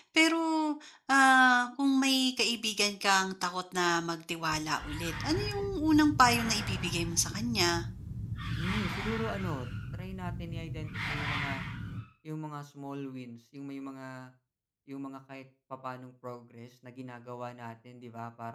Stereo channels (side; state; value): both; identical; correlation 1.00